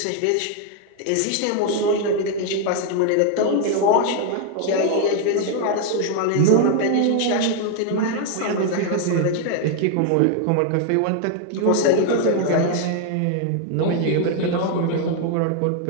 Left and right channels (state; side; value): different; both; correlation 0.00